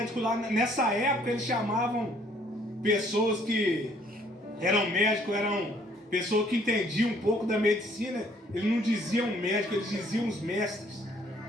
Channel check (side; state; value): both; normal; correlation 0.62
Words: lá. Nessa época eles chamavam pessoas que eram médicos, eram pessoas que entendiam um pouco da medicina. Eles não diziam médico, eles diziam os mestres.